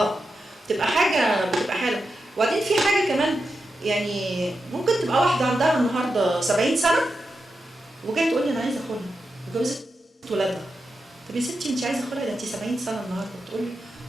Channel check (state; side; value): normal; both; correlation 0.88